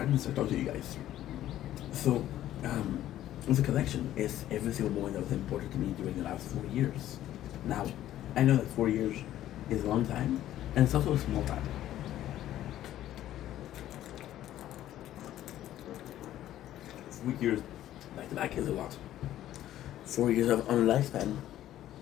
or talk to you guys. So, the collection is every single moment that was important to me during the last 4 years. Now, I know that 4 years is a long time, and it's also a small time. 4 years back to back is a lot. 4 years of on lifespan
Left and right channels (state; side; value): quieter; right; 12.9 dB